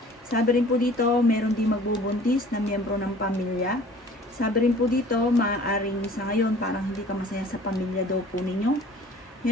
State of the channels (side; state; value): both; normal; correlation 0.49